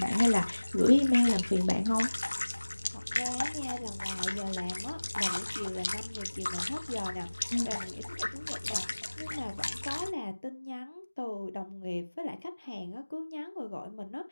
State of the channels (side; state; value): both; inverted; correlation -1.00